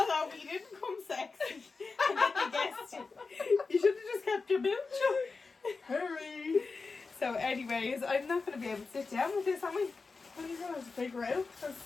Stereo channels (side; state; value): right; quieter; 4.3 dB